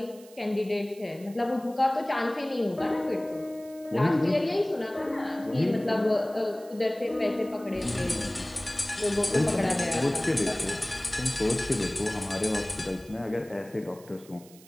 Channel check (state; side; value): noise; right; hiss, 23 dB below the sound